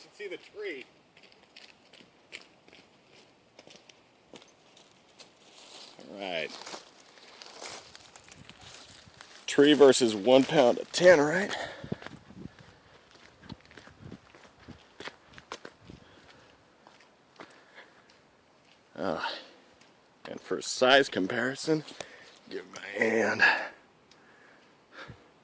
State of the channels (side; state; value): both; identical; correlation 1.00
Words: see the tree. All right. Tree versus 1 pound of Tannerite. And for size comparison, give my hand.